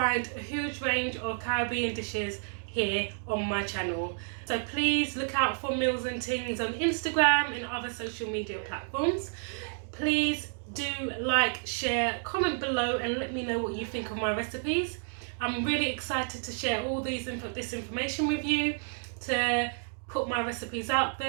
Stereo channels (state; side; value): silent; left; 56 dB below the other